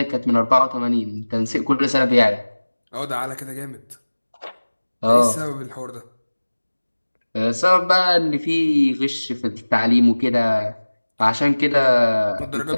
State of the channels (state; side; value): inverted; both; correlation -1.00